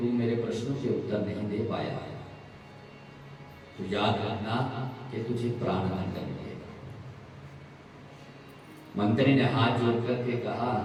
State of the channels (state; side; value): identical; both; correlation 1.00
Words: मेरे प्रश्नों के उत्तर नहीं दे पाया तो याद रखना कि तुझे प्राणदंड मिलेगा। मंत्री ने हाथ जोड़ करके कहा